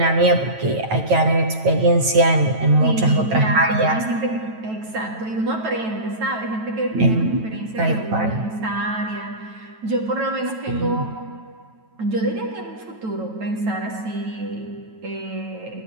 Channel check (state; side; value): late; left; 9.2 ms